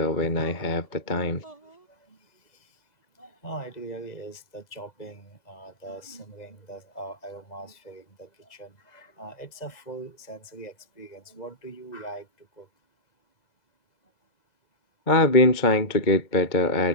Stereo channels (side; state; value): right; late; 2.0 ms